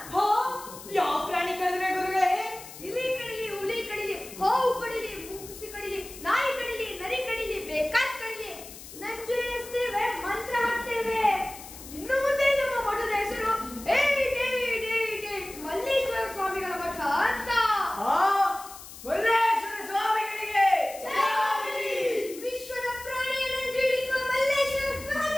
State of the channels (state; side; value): noise; left; hiss, 15 dB below the sound